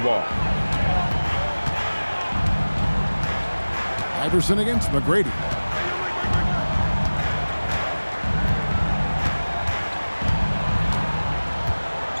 Iverson against McGrady.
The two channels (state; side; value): inverted; both; correlation -1.00